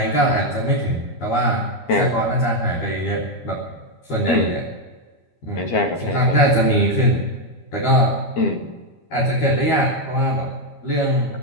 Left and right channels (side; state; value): right; late; 13 ms